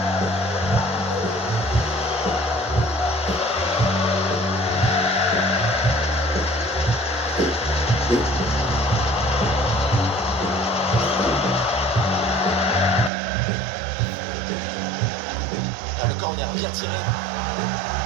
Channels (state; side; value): drops out; left; at 13.1 s